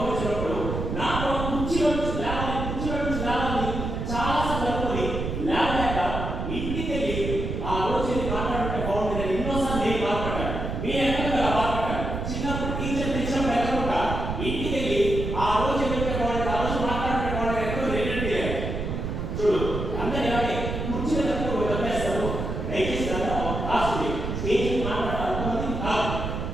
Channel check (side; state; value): right; noise; rumble, 4 dB below the sound